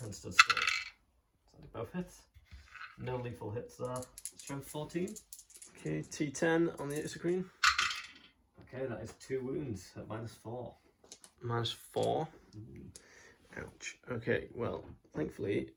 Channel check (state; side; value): identical; both; correlation 1.00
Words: and stood still. So they both hit. No lethal hits there. Strength 14. Okay, T10 on the Execreen. Okay, that is 2 wounds at -4. -4. Ouch. Okay, well, thankfully